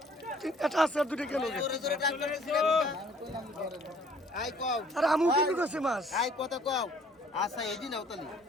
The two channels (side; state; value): both; normal; correlation 0.57